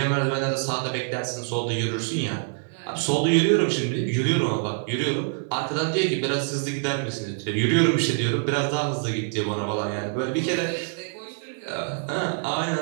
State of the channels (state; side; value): silent; left; 61 dB below the other